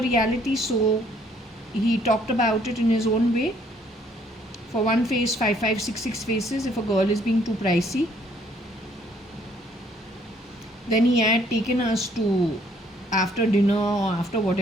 reality, so he talked about it in his own way. For one face, 5566 faces if a girl is being too pricey. Then he had taken us to, after dinner or after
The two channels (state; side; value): normal; both; correlation 0.64